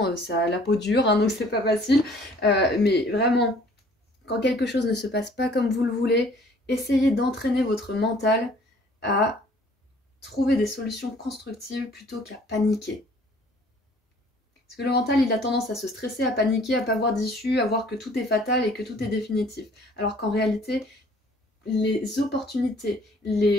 ça a la peau dure, hein, donc c'est pas facile. Mais vraiment, quand quelque chose ne se passe pas comme vous le voulez, essayez d'entraîner votre mental à trouver des solutions constructives plutôt qu'à paniquer. Parce que le mental, il a tendance à se stresser, à paniquer, à pas voir d'issue, à voir que tout est fatal et que tout est définitif. Alors qu'en réalité, les opportunités,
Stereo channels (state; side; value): normal; both; correlation 0.56